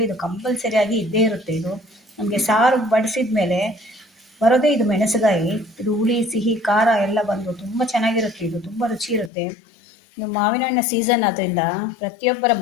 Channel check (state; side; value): drops out; right; at 9.3 s